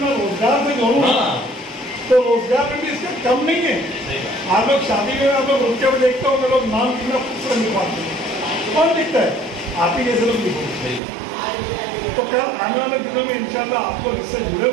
रोजगार से जोड़ूँ तो रोजगार में भी इसका कम नहीं है। आप लोग शादी में आप लोग रुक के देखते हो, लोग नाम कितना खूबसूरत लिखवाते हैं, कौन लिखता है? आप ही जैसे लोग लिखो। तो कल आने वाले दिनों में इंशाल्लाह आप लोग इससे जुड़े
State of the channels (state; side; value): drops out; left; at 11.0 s